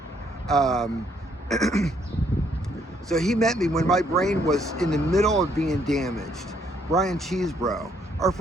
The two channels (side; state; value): both; normal; correlation 0.69